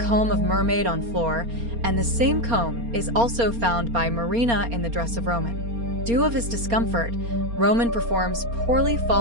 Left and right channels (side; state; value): left; late; 4.3 ms